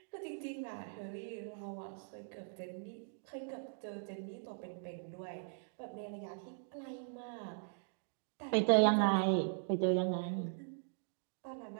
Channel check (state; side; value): silent; left; digital silence